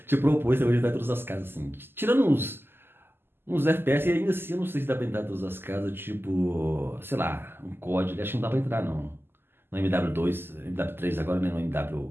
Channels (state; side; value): late; left; 0.11 ms